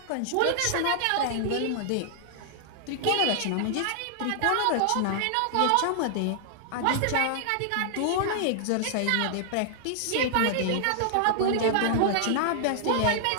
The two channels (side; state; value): both; different; correlation -0.01